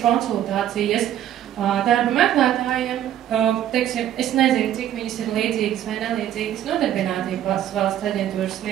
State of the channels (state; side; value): quieter; left; 11.3 dB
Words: konsultācijas darba meklētājiem. Teiksim, es nezinu, cik viņas ir līdzīgas vai nelīdzīgas nodarbinātības valsts aģentūras